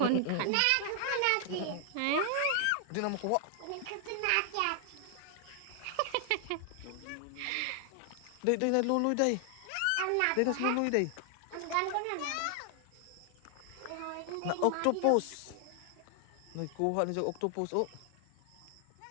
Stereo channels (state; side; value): different; both; correlation 0.00